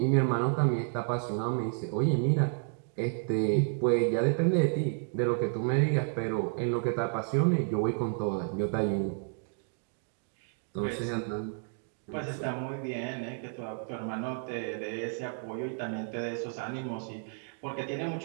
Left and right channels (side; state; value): left; silent; 57 dB below the other